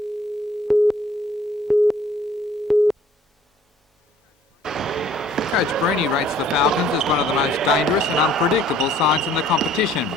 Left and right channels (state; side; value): normal; both; correlation 0.57